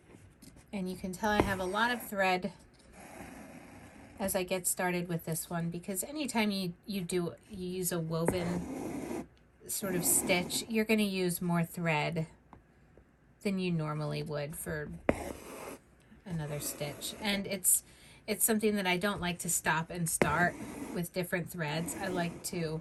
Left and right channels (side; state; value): both; identical; correlation 1.00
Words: And you can tell I have a lot of thread as I get started with this one, because anytime you use a woven sort of stitch, you're going to use more thread than you normally would for another stitch. And it's something that I don't like to stop and start with different threads. I like